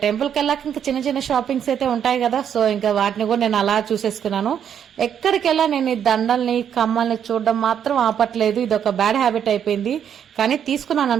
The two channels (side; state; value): left; quieter; 8.7 dB